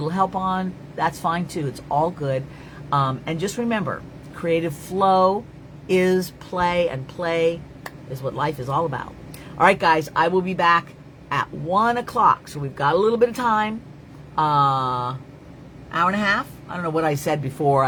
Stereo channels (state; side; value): identical; both; correlation 1.00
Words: help on, that's fine too. It's all good. And just remember, creative flow is play, and play is what life is all about. All right, guys, I will be back at 1 o'clock. So we've got a little bit of time. Hour and a half. I don't know what I said before.